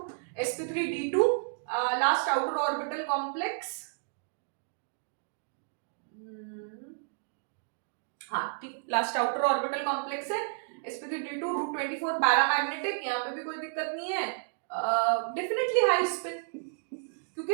sp3d2 last outer orbital complex. हाँ ठीक, लास्ट आउटर ऑर्बिटल कॉम्प्लेक्स है sp3d2 √24 पैरामैग्नेटिक, यहाँ पे भी कोई दिक्कत नहीं है, डेफिनेटली हाई स्पिन, क्योंकि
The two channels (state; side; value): silent; left; digital silence